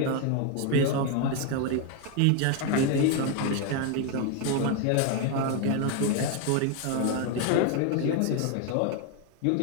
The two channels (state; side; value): different; both; correlation 0.01